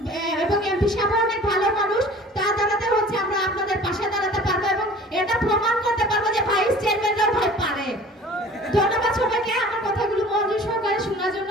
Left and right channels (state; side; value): normal; both; correlation 0.45